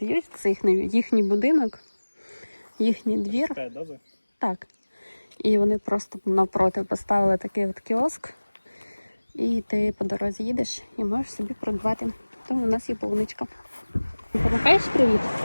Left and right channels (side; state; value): both; inverted; correlation -1.00